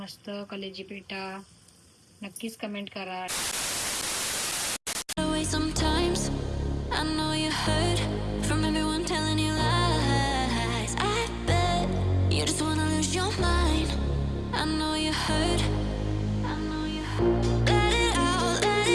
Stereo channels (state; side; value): identical; both; correlation 1.00